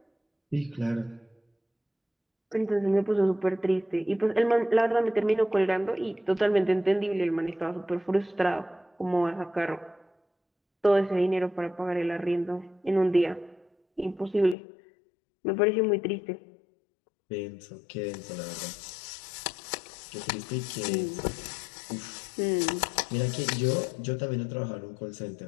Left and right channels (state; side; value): drops out; right; at 14.6 s